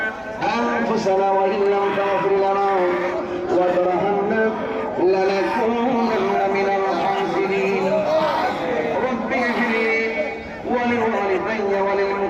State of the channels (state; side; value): identical; both; correlation 1.00